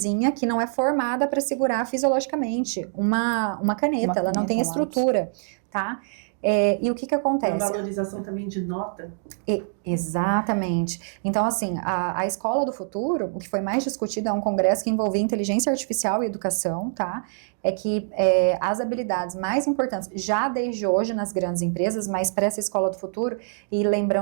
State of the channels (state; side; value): silent; left; digital silence